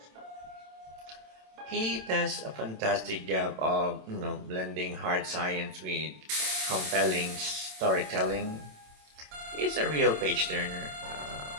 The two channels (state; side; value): late; left; 27 ms